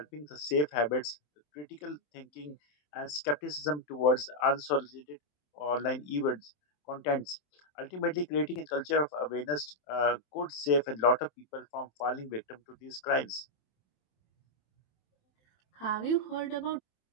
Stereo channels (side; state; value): right; late; 27 ms